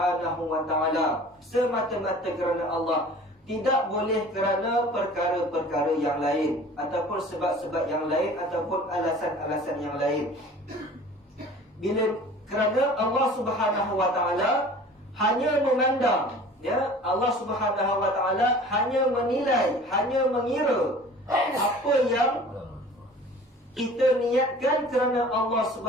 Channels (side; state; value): both; normal; correlation 0.44